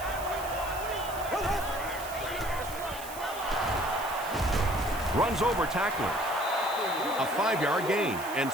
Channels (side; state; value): right; noise; hiss, 13 dB below the sound